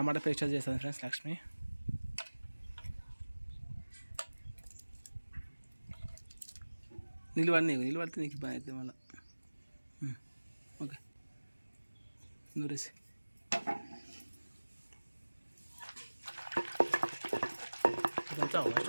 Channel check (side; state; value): both; inverted; correlation -1.00